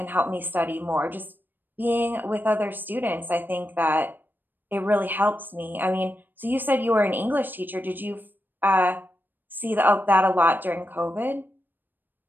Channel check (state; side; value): late; left; 0.093 ms